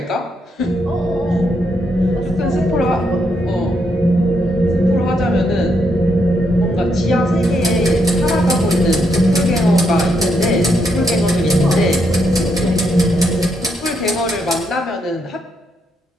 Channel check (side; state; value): both; normal; correlation 0.78